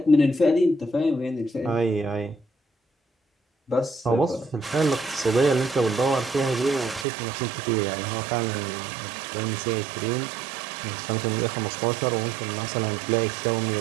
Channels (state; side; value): drops out; left; at 7.1 s